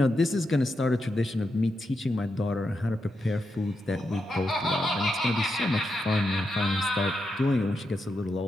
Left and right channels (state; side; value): normal; both; correlation 0.85